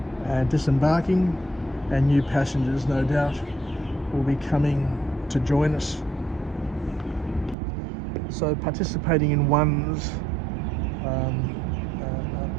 and disembarking, and new passengers no doubt will be coming to join us. So participating in one's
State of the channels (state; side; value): drops out; left; at 7.6 s